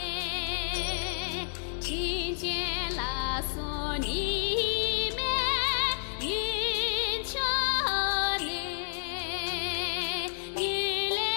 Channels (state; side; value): silent; right; digital silence